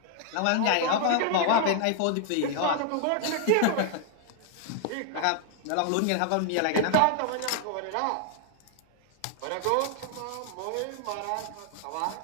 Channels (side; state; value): both; different; correlation 0.00